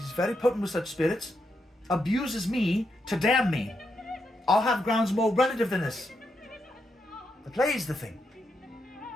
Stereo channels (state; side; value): normal; both; correlation 0.82